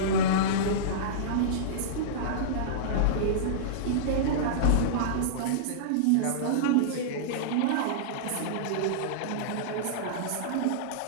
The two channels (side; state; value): both; different; correlation -0.04